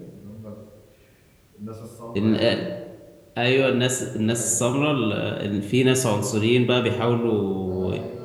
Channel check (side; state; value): both; identical; correlation 1.00